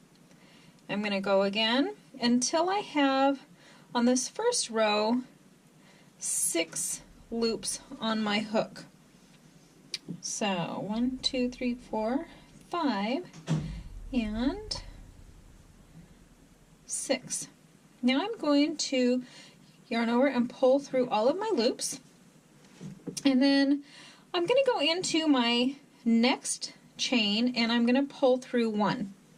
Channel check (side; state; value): both; identical; correlation 1.00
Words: I'm going to go again until I have on this first row 6 loops on my hook. So 1, 2, 3, 4, 5, and 6. Now I'm going to yarn over and pull through all of my loops, and then I'm going to go into my next chain and I'm going to pull through 1.